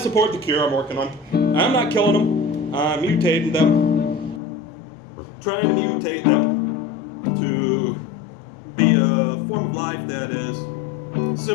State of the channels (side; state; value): right; drops out; at 4.4 s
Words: the cure I'm working on. I'm not killing them. I'm mutating them. Trying to mutate them to be a form of life that is